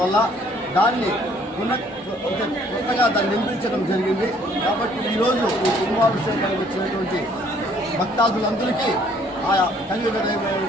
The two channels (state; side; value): normal; both; correlation 0.61